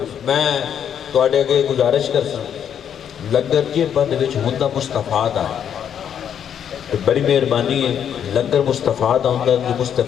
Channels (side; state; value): right; quieter; 8.8 dB